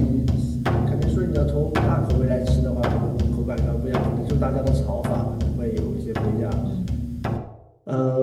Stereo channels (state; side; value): identical; both; correlation 1.00